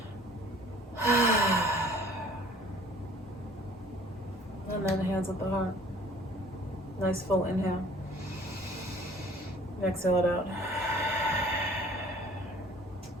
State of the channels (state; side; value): normal; both; correlation 0.52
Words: And then hands at the heart. Nice full inhale. Exhale it out.